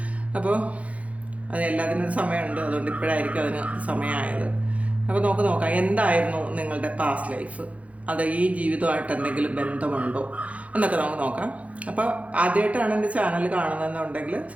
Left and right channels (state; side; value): late; left; 0.066 ms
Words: അപ്പോൾ അത് എല്ലാത്തിനൊരു സമയമുണ്ട്, അതുകൊണ്ട് ഇപ്പോഴായിരിക്കും അതിന് സമയമായത്. അപ്പോൾ നമുക്ക് നോക്കാം എന്തായിരുന്നു നിങ്ങളുടെ പാസ്റ്റ് ലൈഫ്, അത് ഈ ജീവിതമായിട്ട് എന്തെങ്കിലും ബന്ധമുണ്ടോ എന്നൊക്കെ നമുക്ക് നോക്കാം. അപ്പോൾ ആദ്യമായിട്ടാണ് എൻ്റെ ചാനൽ കാണുന്നതെന്നുണ്ടെങ്കിൽ